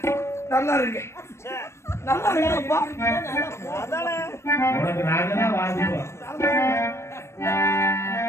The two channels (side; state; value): right; late; 0.13 ms